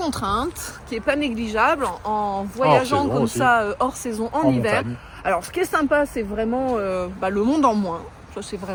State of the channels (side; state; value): both; identical; correlation 1.00